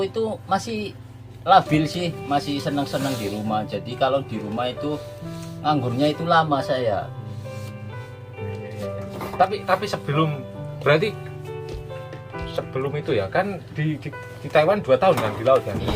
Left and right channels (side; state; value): both; identical; correlation 1.00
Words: itu masih labil sih, masih senang-senang di rumah. Jadi kalau di rumah itu nganggurnya itu lama saya. tapi sebelum itu ya kan di Taiwan 2 tahun kan di laut kan.